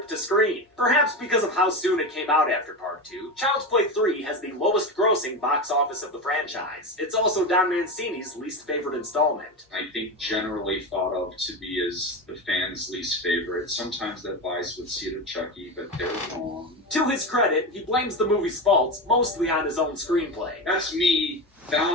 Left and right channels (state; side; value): normal; both; correlation 0.20